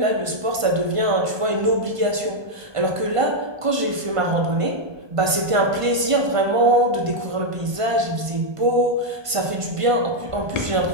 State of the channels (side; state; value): left; late; 1.5 ms